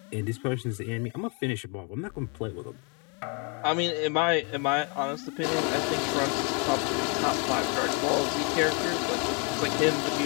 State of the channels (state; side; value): quieter; right; 35.3 dB